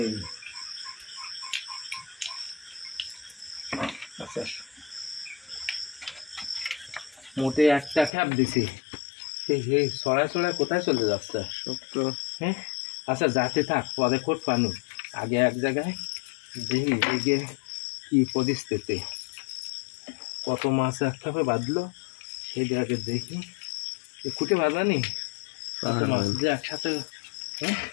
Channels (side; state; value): right; drops out; at 8.1 s